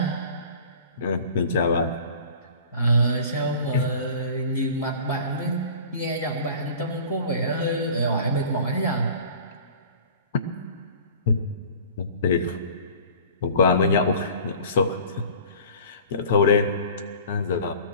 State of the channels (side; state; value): both; inverted; correlation -0.43